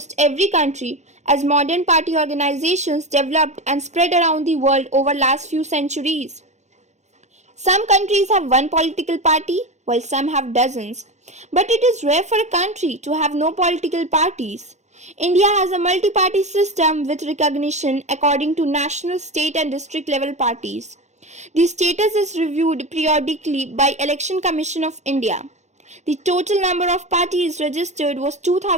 every country as modern party organizations developed and spread around the world over last few centuries. Some countries have one political party while some have dozens, but it is rare for a country to have no political parties. India has a multi-party system with recognition according to national, state and district level parties. The status is reviewed periodically by Election Commission of India. The total number of parties registered was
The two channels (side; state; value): left; late; 0.33 ms